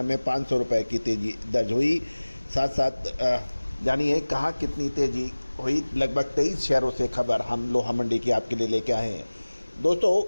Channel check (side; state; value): both; inverted; correlation -1.00